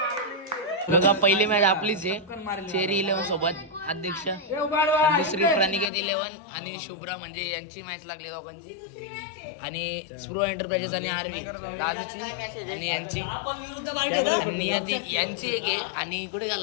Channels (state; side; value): drops out; right; at 5.9 s